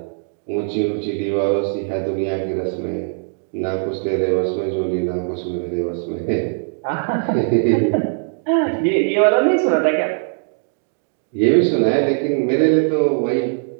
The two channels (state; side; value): silent; left; 65 dB below the other